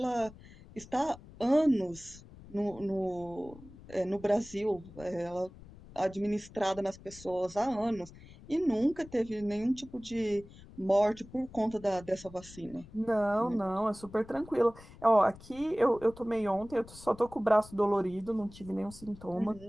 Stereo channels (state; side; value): noise; left; rumble, 19 dB below the sound